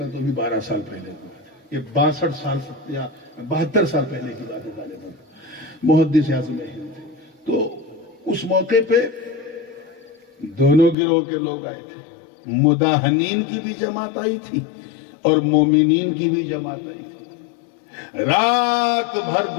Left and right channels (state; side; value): drops out; right; at 11.0 s